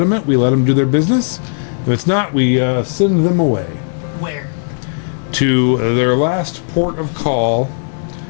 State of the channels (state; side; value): silent; right; digital silence